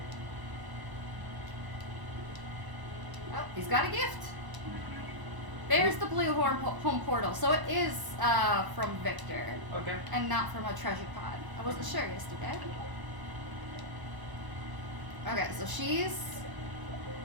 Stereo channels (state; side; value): late; left; 1.0 ms